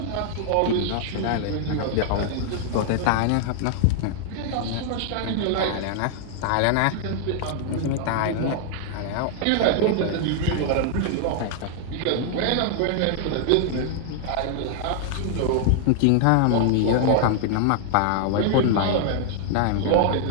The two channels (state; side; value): different; both; correlation 0.00